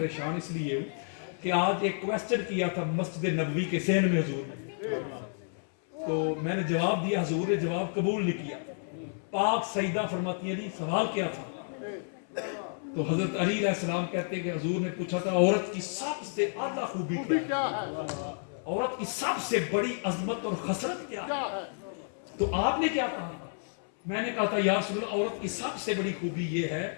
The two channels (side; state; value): right; silent; 57 dB below the other